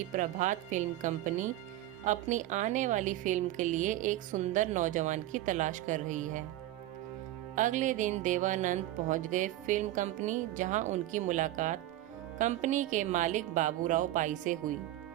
प्रभात फिल्म कंपनी अपनी आने वाली फिल्म के लिए एक सुंदर नौजवान की तलाश कर रही है। अगले दिन देवानंद पहुंच गए फिल्म कंपनी, जहां उनकी मुलाकात कंपनी के मालिक बाबूराव पाई से हुई।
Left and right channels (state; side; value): quieter; left; 14.8 dB